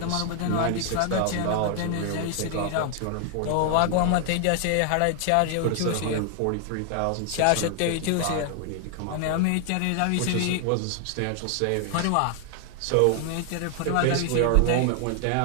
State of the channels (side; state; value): both; different; correlation 0.00